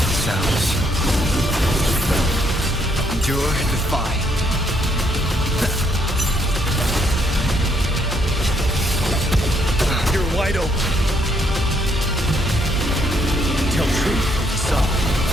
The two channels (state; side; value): normal; both; correlation 0.72